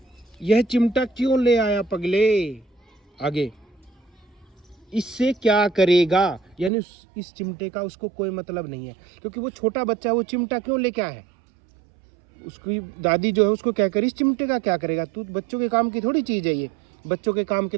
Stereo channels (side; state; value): left; drops out; at 6.7 s